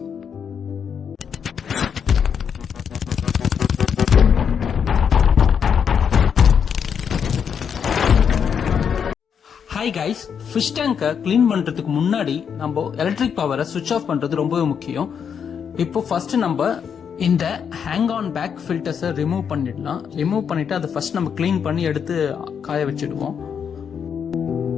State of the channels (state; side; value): quieter; right; 7.3 dB